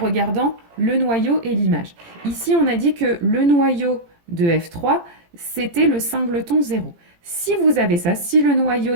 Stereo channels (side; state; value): left; late; 17 ms